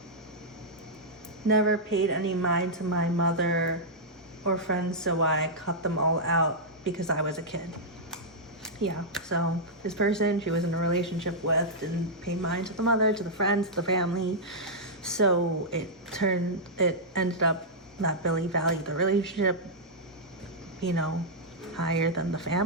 Never paid any mind to my mother or friends, so I cut them all out because I was a kid. Yeah, so this person she was in a relationship with didn't pay mind to the mother, to the friends, to the family. So it ended up that Billie valued the relationship, you know, higher than the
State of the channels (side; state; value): both; normal; correlation -0.09